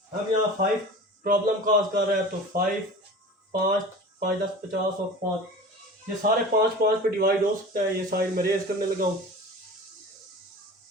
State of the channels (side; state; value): both; normal; correlation 0.37